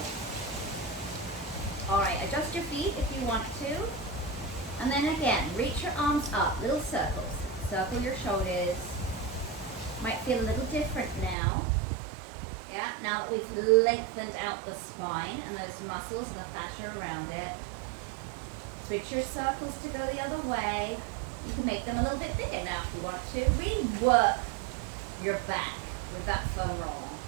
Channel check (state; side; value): drops out; left; at 11.4 s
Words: Alright, adjust your feet if you want to. And then again, reach your arms up, little circles. Circle your shoulders. Might feel a little different now. Yeah, now that we've lengthened out the spine and those muscles and the fascia around it. Switch your circles to go the other way. You can make them a little bit bigger now if you want to. Really work your back with that foam roller,